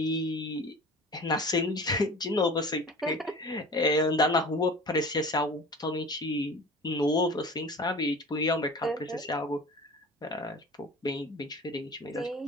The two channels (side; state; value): both; normal; correlation 0.40